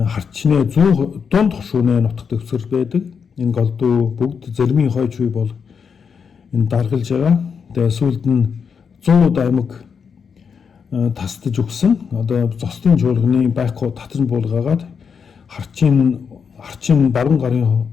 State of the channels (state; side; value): quieter; right; 6.3 dB